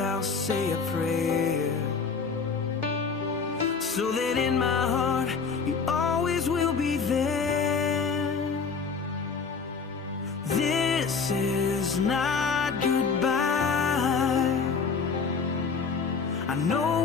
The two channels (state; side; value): quieter; right; 5.3 dB